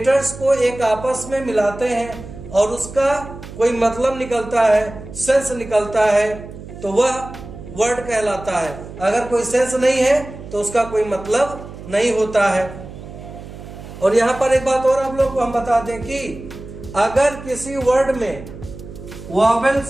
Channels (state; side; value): noise; right; hum, 14 dB below the sound